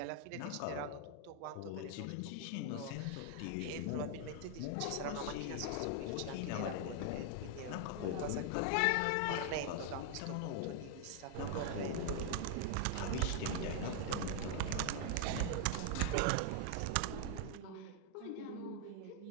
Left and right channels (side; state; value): both; different; correlation 0.00